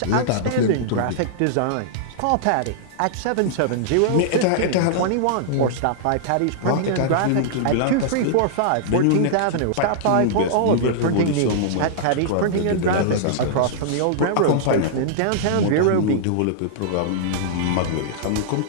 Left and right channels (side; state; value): both; different; correlation -0.01